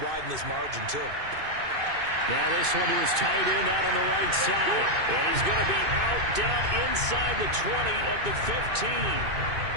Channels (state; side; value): late; left; 2.6 ms